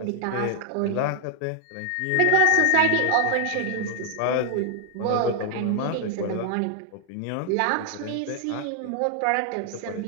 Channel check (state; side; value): different; both; correlation 0.00